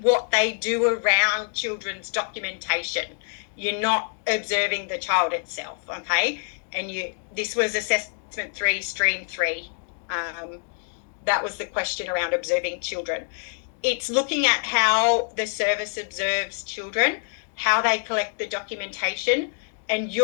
what they do around children's documentation. You're not observing the child itself, okay? And this was assessment 3, stream 3. That was the question around observing children. It's looking at how the service observes children, how they collect the documentation, and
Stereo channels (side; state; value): right; silent; 61 dB below the other